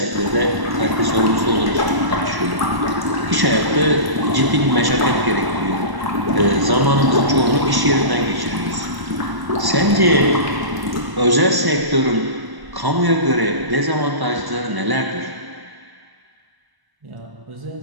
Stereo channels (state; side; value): late; left; 1.1 ms